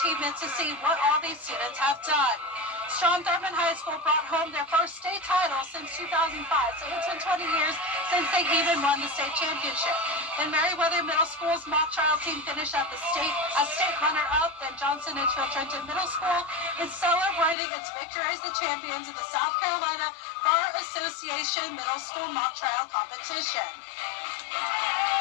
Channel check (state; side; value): drops out; right; at 17.6 s